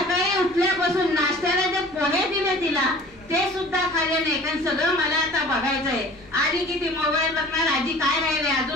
उठल्यापासून नाश्त्याला जे पोहे दिले तिला ते सुद्धा खाल्ले नाही. कारण सगळं मला आता बघायचंय. आधी किती मोबाईल बघणार, आधी काय राहिले,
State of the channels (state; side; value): noise; left; rumble, 26 dB below the sound